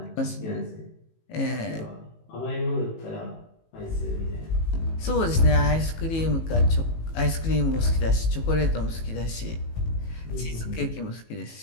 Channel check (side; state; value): right; late; 18 ms